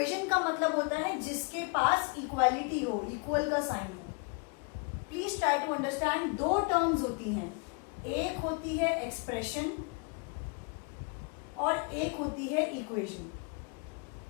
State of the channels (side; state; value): right; quieter; 33.0 dB